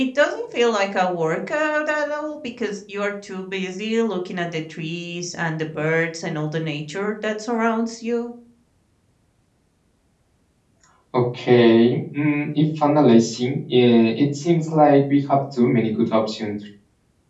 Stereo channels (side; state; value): both; identical; correlation 1.00